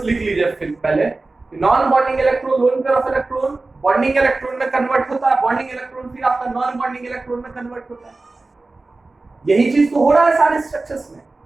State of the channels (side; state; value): left; quieter; 3.4 dB